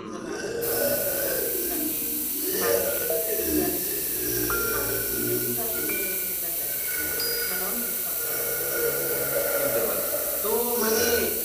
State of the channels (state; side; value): noise; right; rumble, 28 dB below the sound